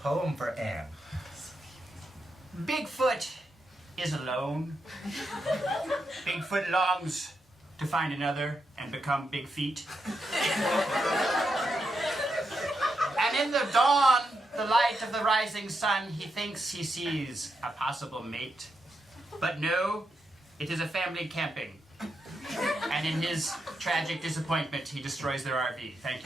for Anne? Bigfoot is alone. Bigfoot longs to find another and become Big Feet. And in the dawn, the light of the rising sun, he thinks he sees a possible mate. But no, it is a family camping. And in his tragic disappointment, he destroys their RV. Thank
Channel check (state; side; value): normal; both; correlation 0.84